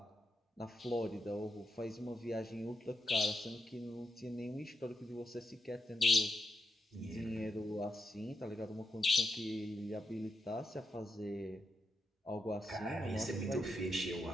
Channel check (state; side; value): normal; both; correlation 0.83